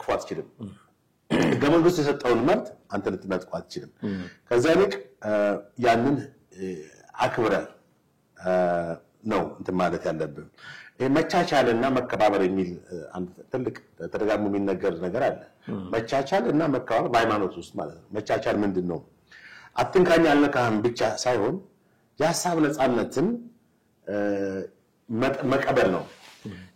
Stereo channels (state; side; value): identical; both; correlation 1.00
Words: አትችልም። ሕገ መንግስቱ የሰጠውን መብት አንተ ልትነጥቀው አትችልም። ከዛ ይልቅ ያንን አክብረህ ነው እንትን ማለት ያለብን። መቻቻልና መከባበር የሚል አንድ ትልቅ ተደጋግሞ የሚነገር ነገር አለ። መቻቻልና መከባበር በሃይማኖት ውስጥ ማለት ነው። መቻቻል ምንድነው? አትንካኝ አልነካህም ብቻ ሳይሆን የሐሳብ ነፃነትን መቀበል ነው።